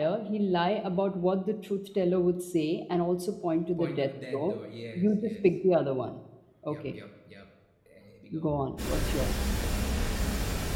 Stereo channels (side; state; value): both; identical; correlation 1.00